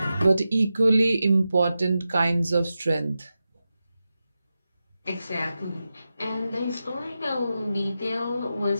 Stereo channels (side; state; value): both; inverted; correlation -0.91